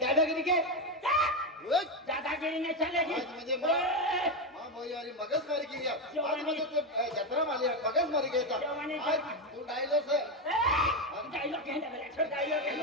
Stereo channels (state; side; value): normal; both; correlation 0.10